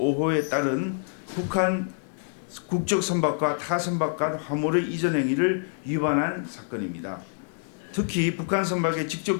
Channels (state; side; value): silent; right; digital silence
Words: 따른 북한 국적 선박과 타 선박 간 화물의 이전 행위를 위반한 사건입니다. 특히 북한 선박에